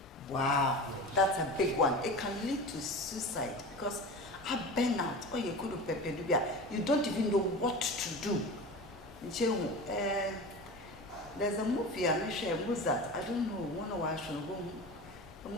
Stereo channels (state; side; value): normal; both; correlation 0.31